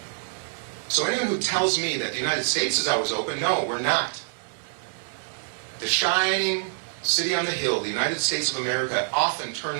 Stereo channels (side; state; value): left; silent; 61 dB below the other